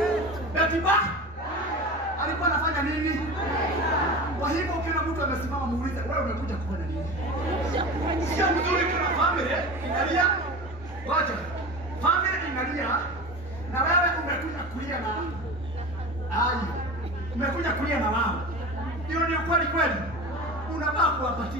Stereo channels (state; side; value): normal; both; correlation 0.31